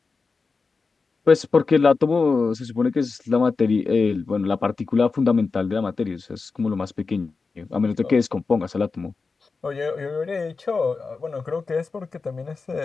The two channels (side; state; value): right; quieter; 4.4 dB